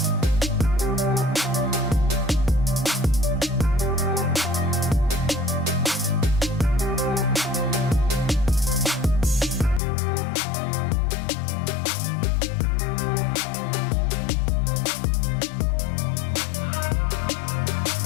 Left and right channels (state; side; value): drops out; right; at 9.8 s